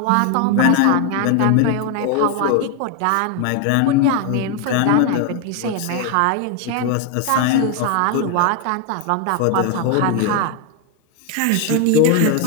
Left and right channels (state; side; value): different; both; correlation 0.01